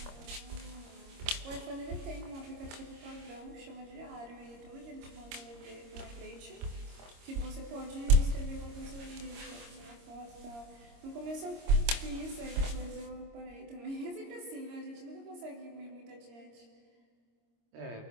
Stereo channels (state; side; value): late; left; 26 ms